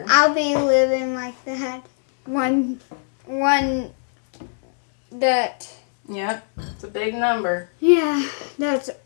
I'll be living like that. One that. Yep, it's a big number. Yeah, that's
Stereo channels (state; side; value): silent; right; digital silence